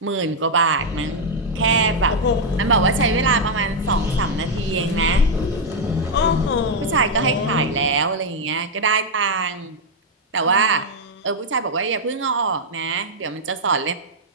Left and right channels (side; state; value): both; normal; correlation -0.01